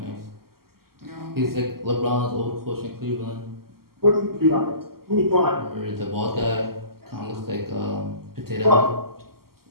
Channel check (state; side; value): late; left; 0.93 ms